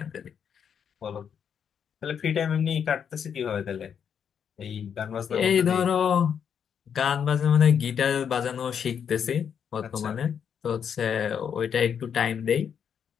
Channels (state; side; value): quieter; right; 7.7 dB